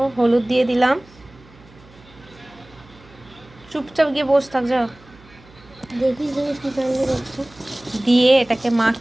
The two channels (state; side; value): noise; right; hum, 25 dB below the sound